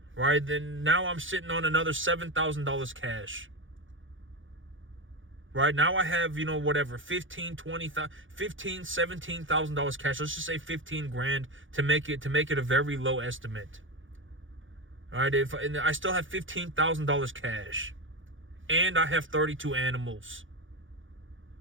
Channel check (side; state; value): left; late; 0.57 ms